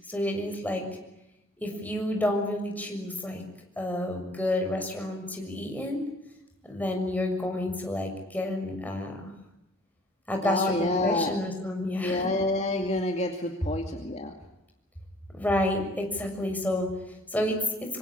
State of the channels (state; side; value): normal; both; correlation 0.56